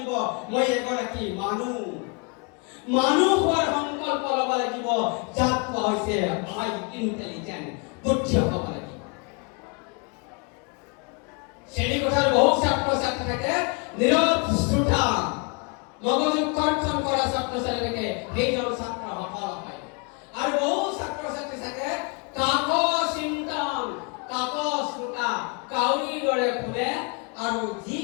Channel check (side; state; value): right; quieter; 32.9 dB